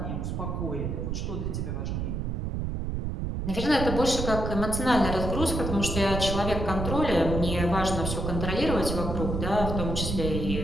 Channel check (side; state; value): right; noise; rumble, 2 dB below the sound